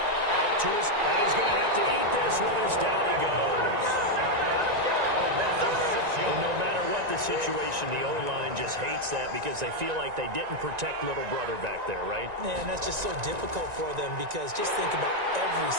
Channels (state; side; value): late; left; 1.9 ms